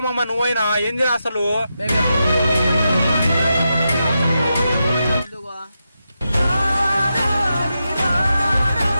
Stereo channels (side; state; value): both; inverted; correlation -0.87